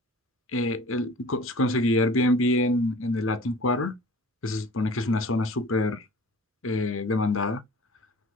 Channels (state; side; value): normal; both; correlation 0.44